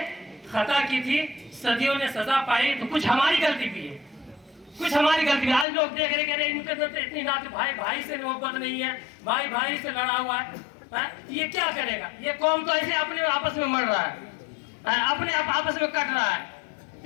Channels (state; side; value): drops out; right; at 5.7 s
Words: खता की थी सदियों ने सजा पाई। तो कुछ हमारी गलती भी है, कुछ हमारी गलती भी। आज लोग देख रहे, कह रहे इनके अंदर तो इतनी नात, भाई भाई से मोहब्बत नहीं है, भाई भाई से लड़ा हुआ है, ये क्या करेगा? ये कौम तो ऐसे अपने आपस में मर रहा है, अपने आपस में कट रहा है,